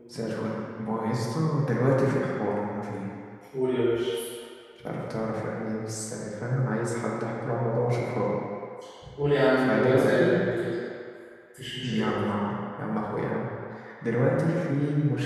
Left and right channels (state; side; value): identical; both; correlation 1.00